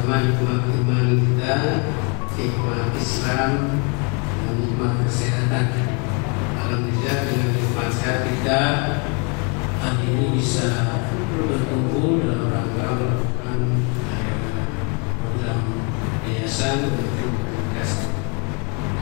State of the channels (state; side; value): quieter; right; 35.3 dB